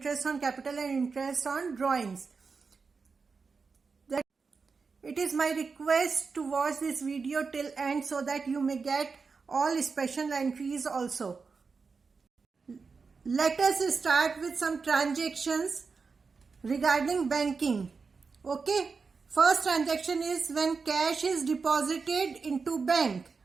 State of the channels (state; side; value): quieter; left; 4.9 dB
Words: on capital and interest on drawings. It is my request to watch this video till end so that you may get all special entries also. Let us start with some transactions regarding banking. Okay. First transaction is when cash is deposited into bank.